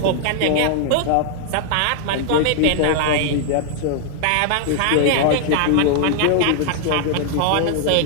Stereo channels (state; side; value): different; both; correlation 0.00